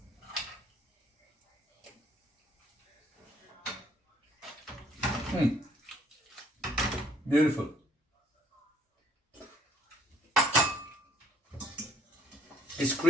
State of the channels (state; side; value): normal; both; correlation 0.63